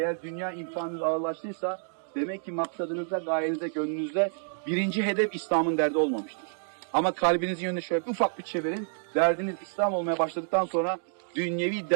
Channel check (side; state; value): left; silent; digital silence